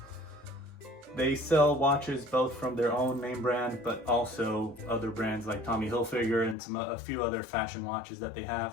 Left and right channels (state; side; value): drops out; right; at 6.6 s